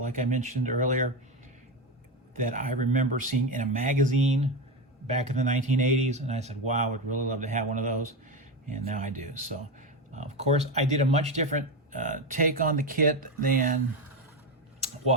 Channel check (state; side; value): normal; both; correlation 0.15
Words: I mentioned earlier, that I remember seeing in a magazine back in the 1980s, and I said, wow, I would really love to have one of those, and now I do. So, of course, I did a much different take on the kit than